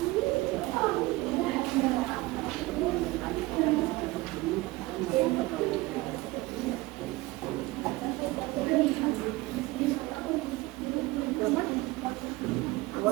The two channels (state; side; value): quieter; left; 20.7 dB